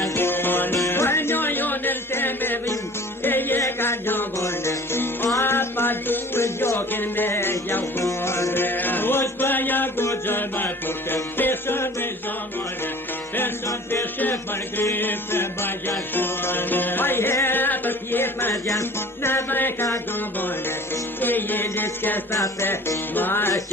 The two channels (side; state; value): both; normal; correlation 0.45